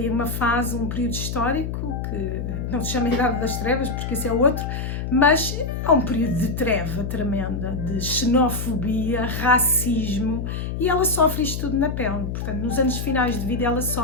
uma fase, um período histórico, que não se chama Idade das Trevas, porque esse é outro, mas é um período de treva tremenda, de xenofobia, racismo, e ela sofre isto tudo na pele. Portanto, nos anos finais de vida ela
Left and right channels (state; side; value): noise; left; hum, 4 dB below the sound